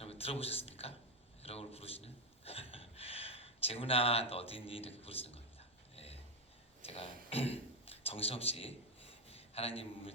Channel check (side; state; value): both; normal; correlation 0.07